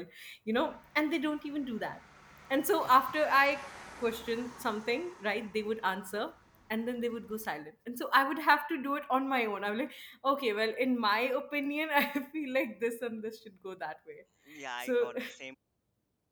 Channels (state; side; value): identical; both; correlation 1.00